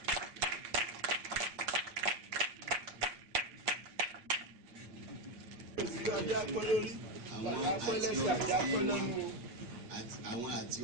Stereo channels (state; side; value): late; left; 8.5 ms